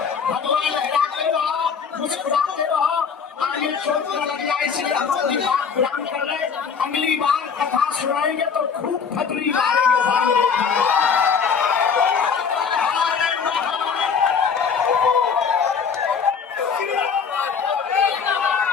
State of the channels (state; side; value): quieter; right; 6.3 dB